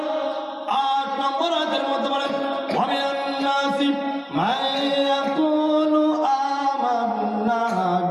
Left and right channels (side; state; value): both; identical; correlation 1.00